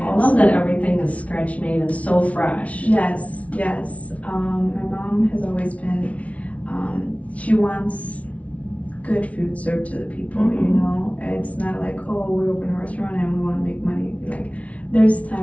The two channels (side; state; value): right; late; 0.065 ms